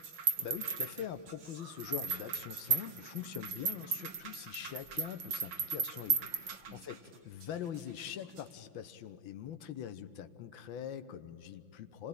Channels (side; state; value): left; late; 5.9 ms